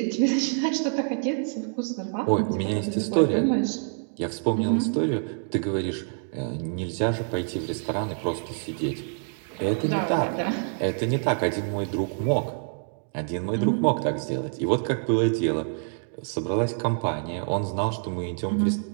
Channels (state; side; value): silent; left; 61 dB below the other